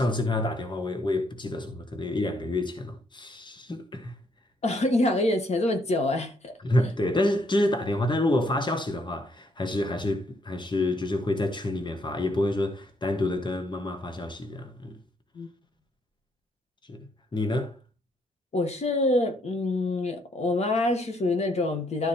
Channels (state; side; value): normal; both; correlation 0.71